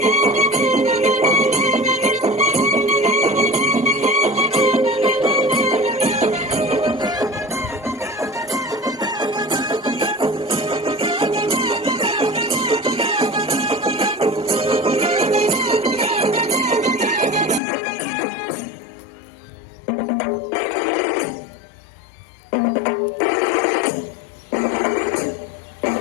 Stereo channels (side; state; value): right; drops out; at 17.6 s